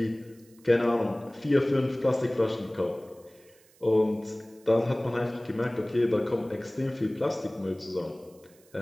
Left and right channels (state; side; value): noise; right; hiss, 29 dB below the sound